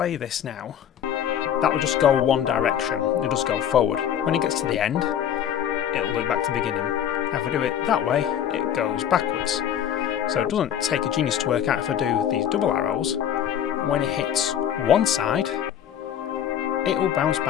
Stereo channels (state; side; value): quieter; right; 9.7 dB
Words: this now, that will just go one direction, it'll just go forward. When it gets to the end, it'll loop back to the beginning. Now if I do it that way, it goes backwards. So it doesn't take a genius to work out if I do these double arrows, when it hits one side, it will bounce